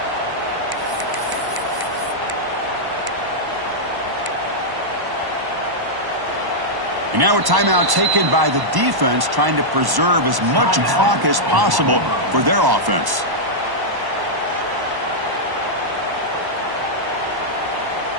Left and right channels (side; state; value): left; late; 1.1 ms